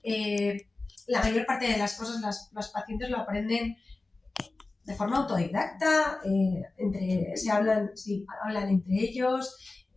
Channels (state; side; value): quieter; right; 3.3 dB